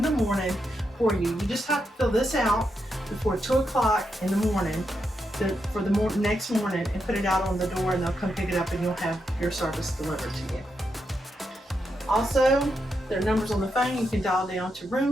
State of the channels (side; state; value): both; normal; correlation 0.83